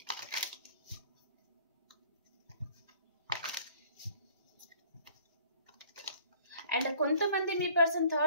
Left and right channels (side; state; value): both; inverted; correlation -0.54